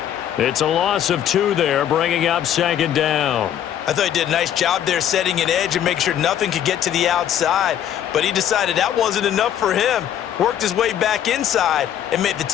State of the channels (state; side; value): quieter; right; 10.3 dB